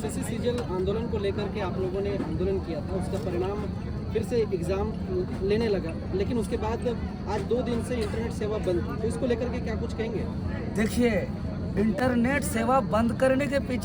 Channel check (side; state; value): both; identical; correlation 1.00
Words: सीजल आंदोलन को लेकर के आप लोगों ने आंदोलन किया था, उसका परिणाम फिर से एग्जाम लेने लगा, लेकिन उसके बाद आज 2 दिन से इंटरनेट सेवा बंद थी, तो इसको लेकर के क्या कुछ कहेंगे? देखिए, इंटरनेट सेवा बंद करने के